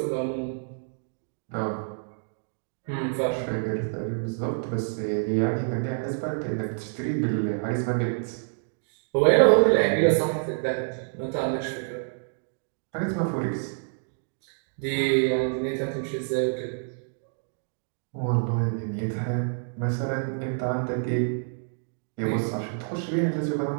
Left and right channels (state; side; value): silent; left; digital silence